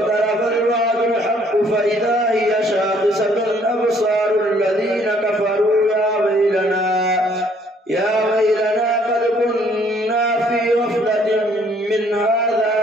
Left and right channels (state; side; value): normal; both; correlation 0.63